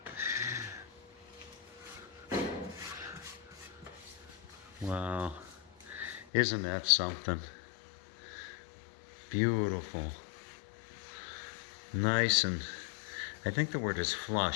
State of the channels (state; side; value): drops out; right; at 6.2 s